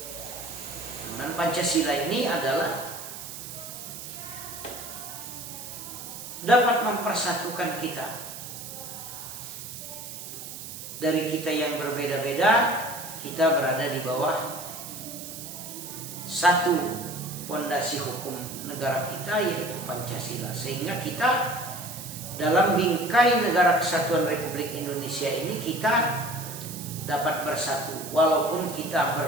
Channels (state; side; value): noise; right; hiss, 10 dB below the sound